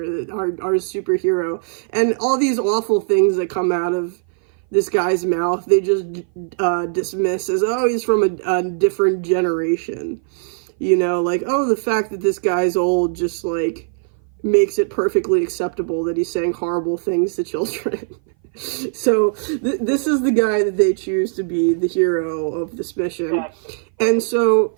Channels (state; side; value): silent; left; 58 dB below the other